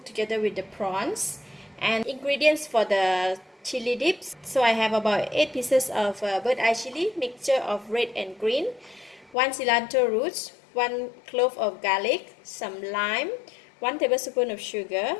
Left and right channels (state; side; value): drops out; right; at 9.3 s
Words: together with the prawns. And ingredients for the chili dips. So I have about 8 pieces of bird eye chili, mixture of red and green, 1 cilantro roots, 1 clove of garlic, some lime, 1 tablespoon of sugar,